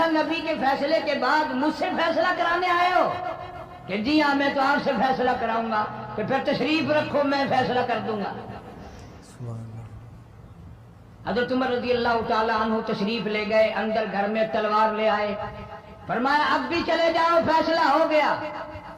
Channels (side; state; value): both; identical; correlation 1.00